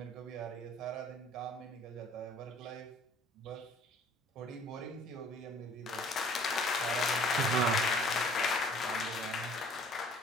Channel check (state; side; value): normal; both; correlation 0.54